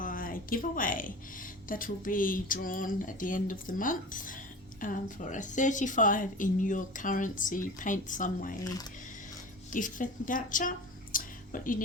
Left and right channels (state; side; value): normal; both; correlation 0.35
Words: giveaway that will be drawn at the end of the month for a 35 in your currency paint some way gift voucher. What you